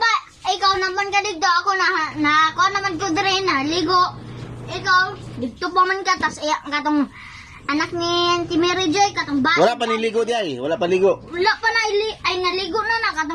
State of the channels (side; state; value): both; identical; correlation 1.00